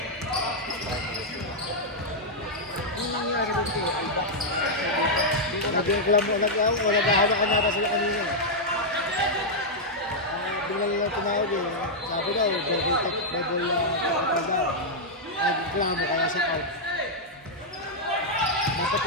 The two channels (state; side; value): normal; both; correlation -0.04